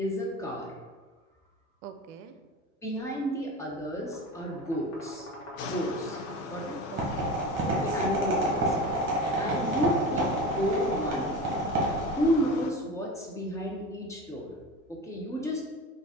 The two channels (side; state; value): both; normal; correlation 0.29